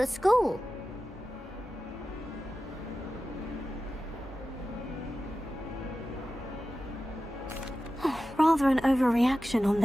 school. Rather an overreaction on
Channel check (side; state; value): both; normal; correlation 0.94